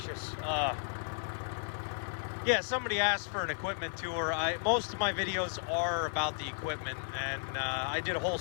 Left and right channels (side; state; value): right; silent; digital silence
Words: Yeah, somebody asked for an equipment tour. Most of my videos are about the equipment, and I did a whole